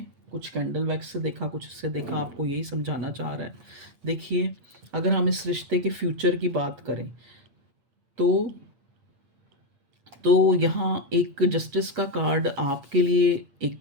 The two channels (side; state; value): left; late; 8.6 ms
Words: कुछ कैंडल वैक्स से देखा, कुछ इससे देखा, आपको यही समझाना चाह रहा है। देखिए, अगर हम इस रिश्ते के फ्यूचर की बात करें, तो यहाँ एक जस्टिस का कार्ड आपके लिए एक